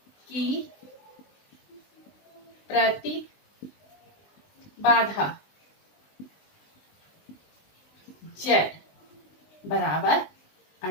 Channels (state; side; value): late; right; 19 ms